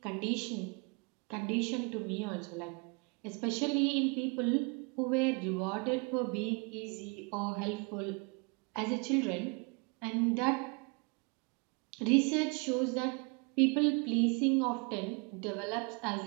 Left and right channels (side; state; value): left; quieter; 32.7 dB